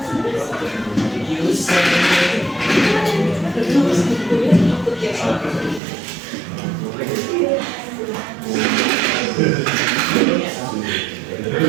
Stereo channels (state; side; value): drops out; left; at 5.8 s